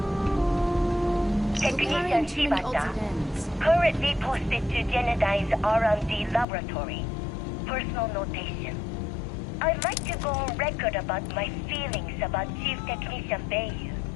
Technician Shibata, currently posted to Genedine's R&D laboratory. Personal notation. I'd like to go on record about my feelings about Chief Technician Bayu.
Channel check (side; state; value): right; drops out; at 6.5 s